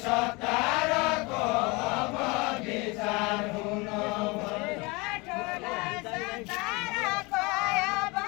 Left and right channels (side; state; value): right; quieter; 26.2 dB